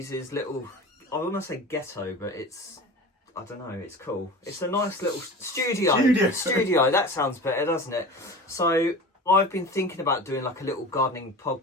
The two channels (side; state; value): both; normal; correlation 0.34